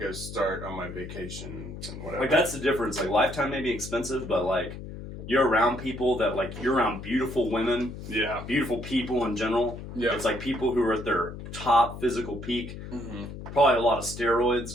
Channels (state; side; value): noise; left; hum, 10 dB below the sound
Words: start on my vacation and whatever. Like that's the difference. Like Lifetime may be expensive, but like you're around people that like you're around beautiful women, beautiful people in general. Yeah. It's like people who are at their top physical peak. Mm-hmm. Probably a lot of steroids